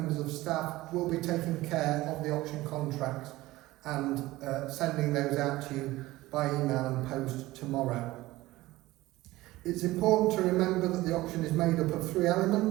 of staff, will be taking care of the auction contracts and sending those out to you by email and post tomorrow. It's important to remember that the auction is made up of 3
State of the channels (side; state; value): left; quieter; 18.1 dB